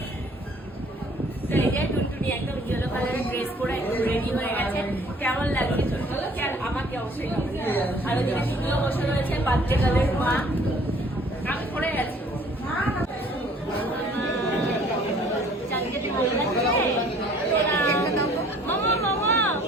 তো এই যে টুনটুনি একদম ইয়েলো কালারের ড্রেস পরে একদম রেডি হয়ে গেছে। কেমন লাগছে টুনটুনিকে? আর আমাকে অবশ্যই কেমন লাগছে। আর ওদিকে টুনটুনিও বসে রয়েছে বাচ্চা কালের মা। আমি পড়ে গেছি মামা মামা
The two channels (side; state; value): both; normal; correlation 0.55